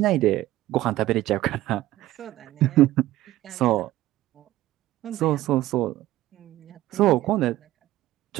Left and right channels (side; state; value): left; quieter; 15.7 dB